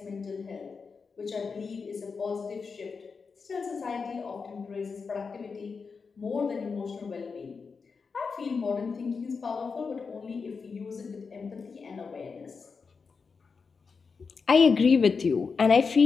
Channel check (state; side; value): quieter; right; 5.1 dB